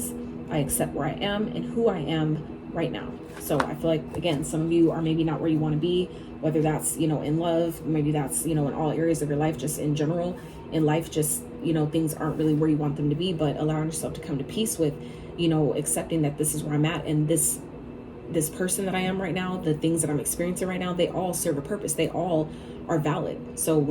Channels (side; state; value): both; identical; correlation 1.00